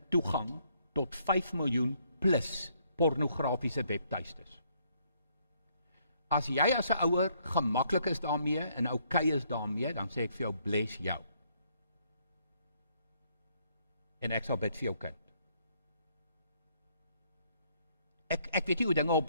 toegang tot 5 miljoen plus pornografiese webtuistes. As jy as 'n ouer gemaklik is daarmee en okay is daarmee, dan sê ek vir jou, bless jou. En ek sal bid vir jou kind. Ek weet nie hoe dinge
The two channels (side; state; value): both; inverted; correlation -0.69